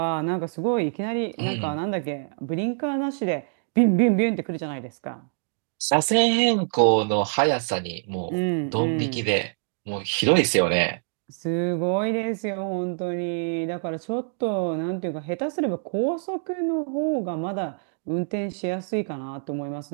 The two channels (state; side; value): silent; left; digital silence